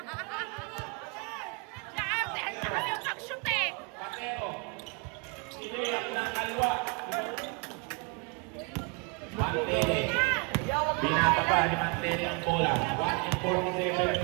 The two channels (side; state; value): left; quieter; 33.2 dB